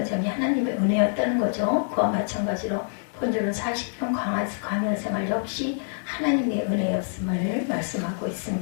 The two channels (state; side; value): silent; right; digital silence